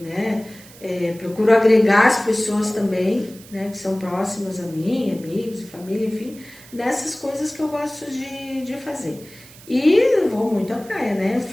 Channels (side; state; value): right; noise; hiss, 21 dB below the sound